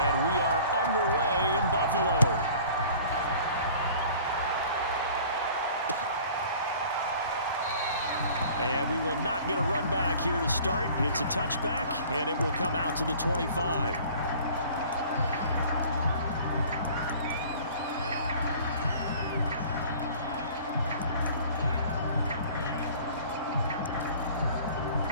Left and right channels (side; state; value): both; inverted; correlation -0.48